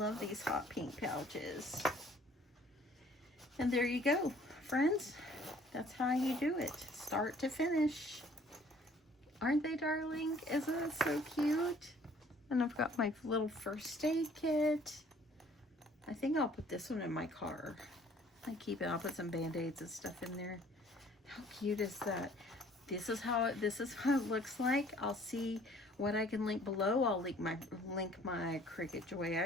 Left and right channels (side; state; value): both; normal; correlation 0.56